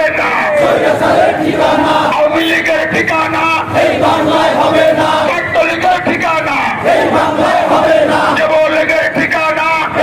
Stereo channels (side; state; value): both; identical; correlation 1.00